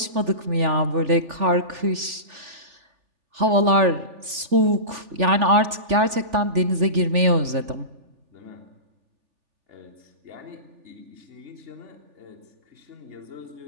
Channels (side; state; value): left; late; 3.4 ms